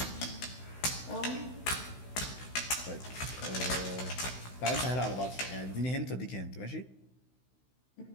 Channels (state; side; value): late; right; 16 ms